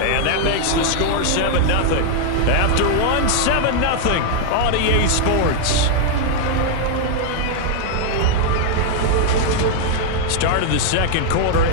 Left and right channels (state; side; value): different; both; correlation 0.00